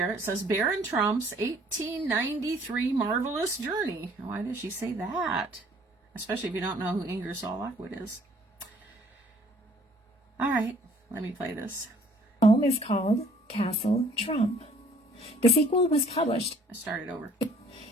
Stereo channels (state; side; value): normal; both; correlation 0.58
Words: It says Barron Trump's 1893 marvelous journey. Why does she say that? Especially if you don't know who Ingersoll Lockwood is. All right, let me play this. Home is called Castle Trump. The sequel was published. I started over.